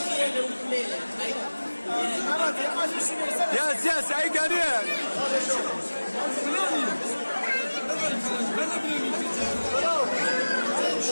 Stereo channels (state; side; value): inverted; both; correlation -1.00